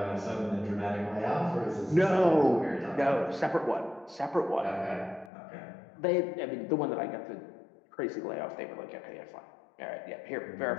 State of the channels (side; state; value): right; drops out; at 5.3 s